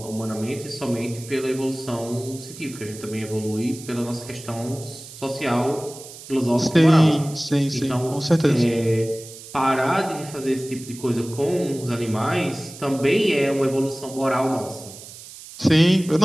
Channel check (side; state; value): right; noise; hiss, 16 dB below the sound